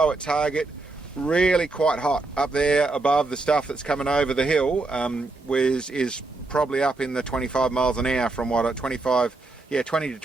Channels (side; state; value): left; quieter; 3.3 dB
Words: at target. Really quite hot up there above the stuff that's coming over the hill. Is probably up in the 25 miles an hour from what 20 to